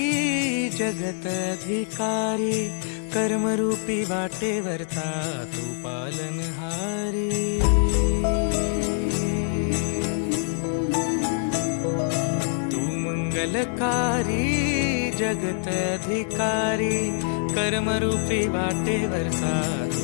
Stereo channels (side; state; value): right; silent; digital silence